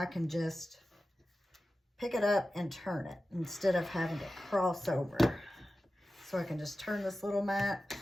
can just pick it up and turn it instead of having to cross over. So I can just turn this little mat,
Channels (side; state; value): both; normal; correlation 0.94